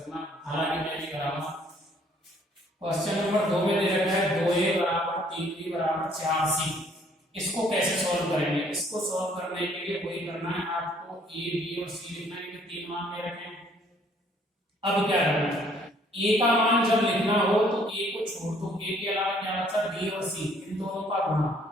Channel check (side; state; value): both; normal; correlation 0.62